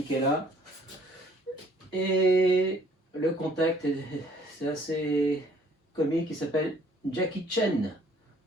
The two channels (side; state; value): both; normal; correlation 0.60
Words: là. Et le contact c'est assez comique, il s'appelle Jackie Chan.